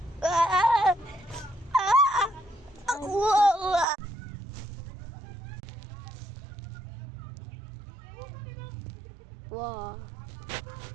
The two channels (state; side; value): drops out; left; at 3.9 s